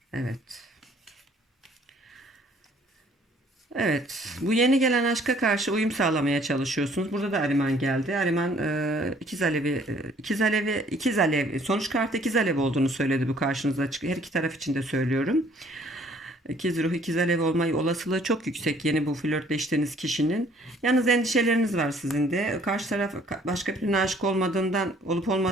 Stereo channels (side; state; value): both; normal; correlation 0.59